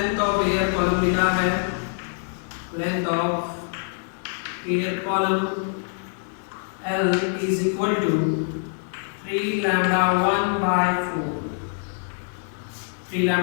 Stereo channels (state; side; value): silent; right; digital silence